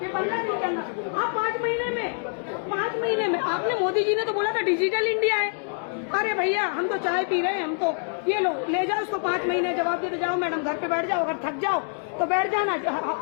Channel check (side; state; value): right; silent; 61 dB below the other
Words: कि 15 दिन के अंदर। आप 5 महीने में आपने, मोदी जी ने तो बोला था डिजिटल इंडिया है। अरे भैया हम तो चाय पी रहे हैं, हम तो ये लो ले जाओ उसको 5 महीने जवाब देते जाओ। मैडम घर पे बैठ जाओ, अगर थक जाओ तो बैठ जाना,